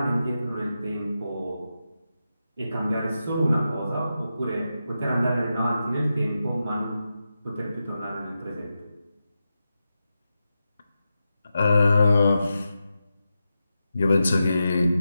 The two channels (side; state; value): both; inverted; correlation -0.90